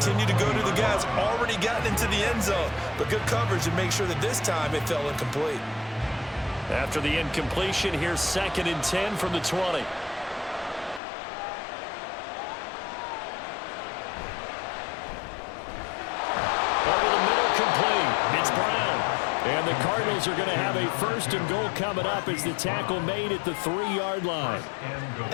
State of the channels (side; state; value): right; drops out; at 11.0 s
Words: to go to the guys already gotten into the end zone. But good coverage and make sure that this time it fell incomplete. After the incompletion, here's 2nd and 10 from the 20. And the Cardinals are going to have a 1st and goal coming up as the tackle made at the 3-yard line.